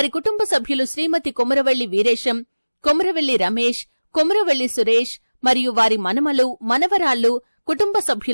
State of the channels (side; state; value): both; inverted; correlation -1.00